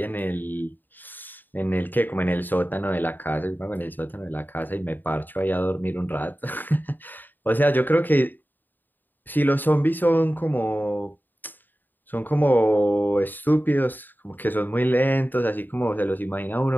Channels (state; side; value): late; right; 0.090 ms